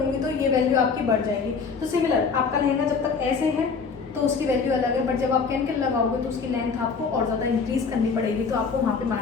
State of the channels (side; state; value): right; quieter; 5.3 dB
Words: तो ये वैल्यू आपकी बढ़ जाएगी। तो सिमिलर आपका लहंगा जब तक ऐसे है तो उसकी वैल्यू अलग है, बट जब आप कैन लगाओगे तो उसकी लेंथ आपको और ज़्यादा इंक्रीज करनी पड़ेगी, तो आपको वहाँ पे